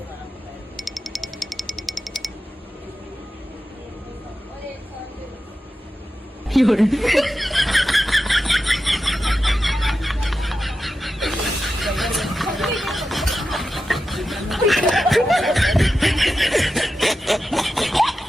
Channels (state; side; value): normal; both; correlation 0.91